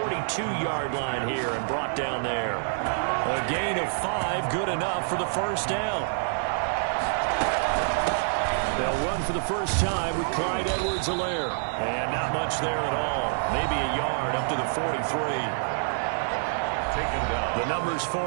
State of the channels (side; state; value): left; silent; 60 dB below the other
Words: line here and brought down there. A gain of 5, good enough for the first down. They'll run for the first time with Clyde Edwards-Helaire. And not much there at all. Maybe a yard up to the 43. Taken down. The numbers